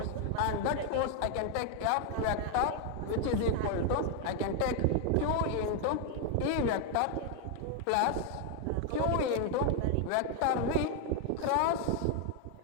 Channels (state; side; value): different; both; correlation 0.00